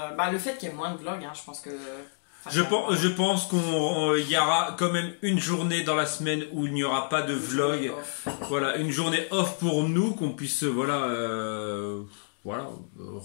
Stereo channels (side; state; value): right; silent; digital silence